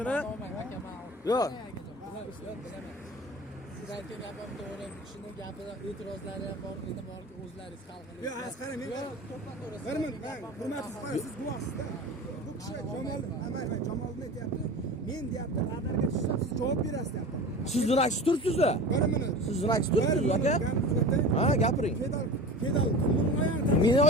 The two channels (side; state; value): both; normal; correlation 0.34